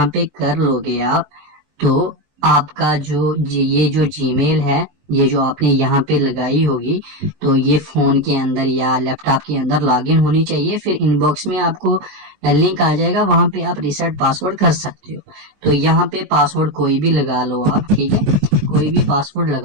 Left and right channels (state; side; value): late; left; 19 ms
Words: पे कर लोगे आप, तो आपका जो ये जो जीमेल है, ये जो आपने यहाँ पे लगाई होगी, तो ये फोन के अंदर या लैपटॉप के अंदर लॉगिन होनी चाहिए। फिर इनबॉक्स में आपको लिंक आ जाएगा, वहां पे आप रिसेट पासवर्ड कर सकते हो। तो यहाँ पे पासवर्ड कोई भी लगा लो आप, ठीक है, कोई भी पासवर्ड